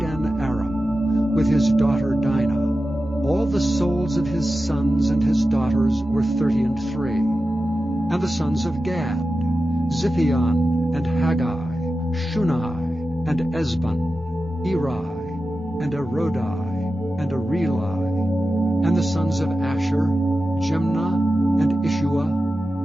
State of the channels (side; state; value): both; normal; correlation 0.93